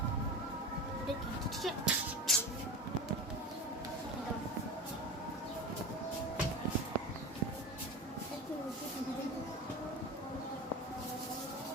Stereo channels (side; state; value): both; normal; correlation 0.28